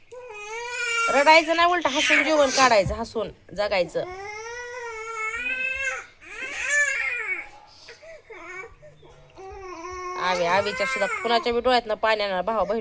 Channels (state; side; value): identical; both; correlation 1.00